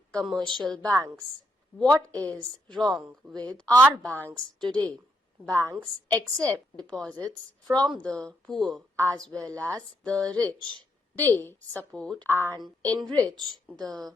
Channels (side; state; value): both; normal; correlation 0.78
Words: commercial banks. What is wrong with our banks today? Banks accept deposits from the poor as well as the rich. They support and enrich the